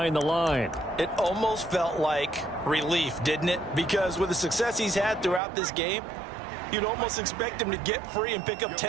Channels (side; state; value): left; drops out; at 5.4 s